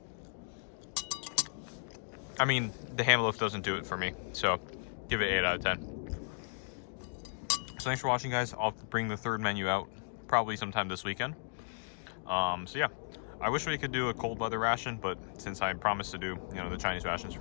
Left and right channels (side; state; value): right; silent; digital silence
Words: I mean, the ham loaf doesn't do it for me, so give it 8 out of 10. So thanks for watching, guys. I'll bring the 3rd menu out probably sometime this weekend. So yeah, I wish we could do a cold weather ration, but since I promised to do, you know, the Chinese rations